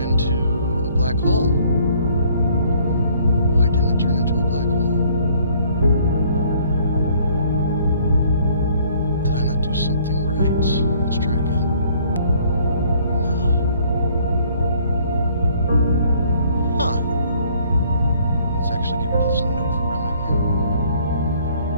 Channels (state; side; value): inverted; both; correlation -0.60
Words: into a black hole. Why didn't it turn into a black hole? Did I not do something right? Let's try again. No. Huh. Let's actually get rid of this Nova remnant here.